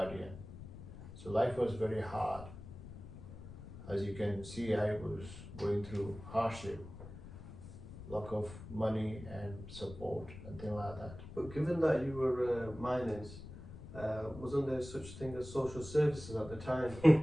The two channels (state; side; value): noise; left; rumble, 13 dB below the sound